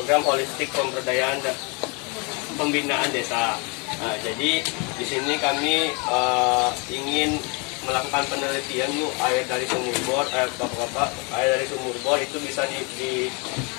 holistik pemberdayaan dan pembinaan desa. Nah, jadi di sini kami ingin melakukan penelitian air dari sumur bor, air dari sumur bor itu bisa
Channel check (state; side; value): quieter; right; 31.9 dB